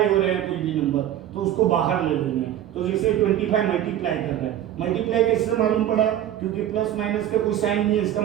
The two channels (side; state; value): left; quieter; 11.7 dB